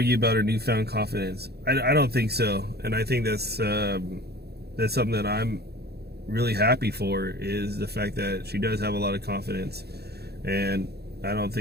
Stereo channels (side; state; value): left; late; 0.47 ms